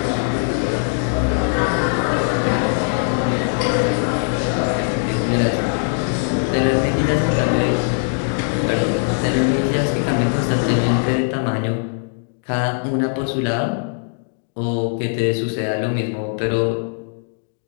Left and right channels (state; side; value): silent; right; 66 dB below the other